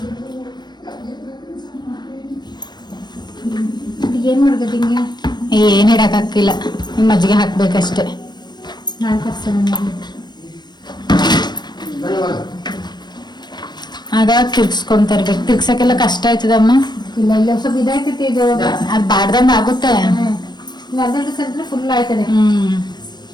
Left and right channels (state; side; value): late; right; 0.21 ms